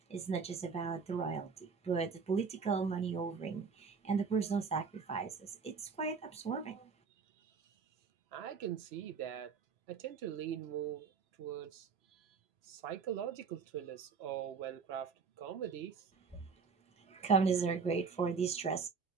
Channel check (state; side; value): quieter; left; 5.5 dB